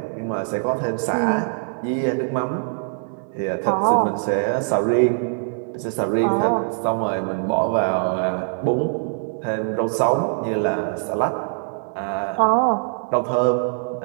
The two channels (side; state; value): left; silent; 57 dB below the other